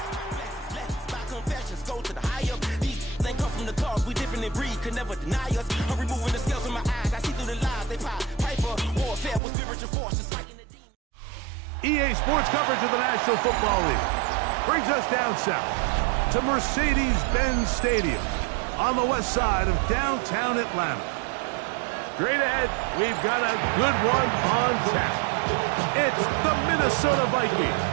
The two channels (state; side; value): drops out; left; at 9.4 s